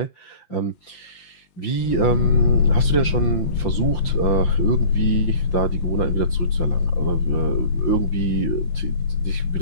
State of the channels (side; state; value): right; late; 5.8 ms